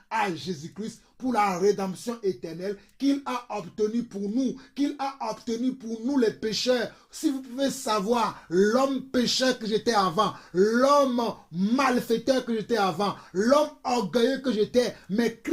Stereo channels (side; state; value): both; identical; correlation 1.00